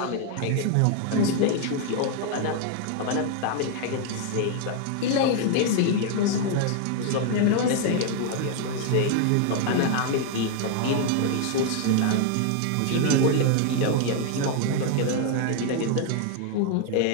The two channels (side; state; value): both; different; correlation 0.00